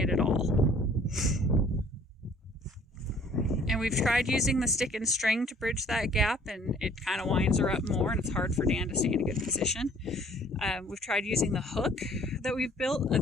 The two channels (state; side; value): normal; both; correlation 0.56